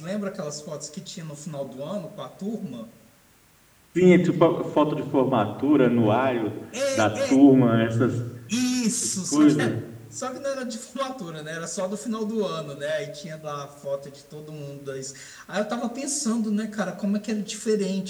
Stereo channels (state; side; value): identical; both; correlation 1.00